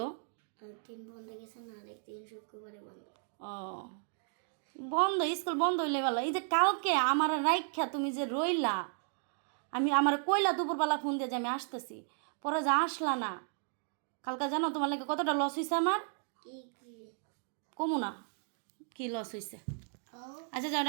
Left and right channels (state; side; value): silent; left; 55 dB below the other